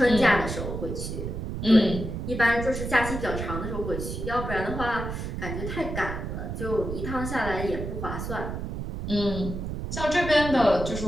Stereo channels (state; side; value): noise; right; rumble, 5 dB below the sound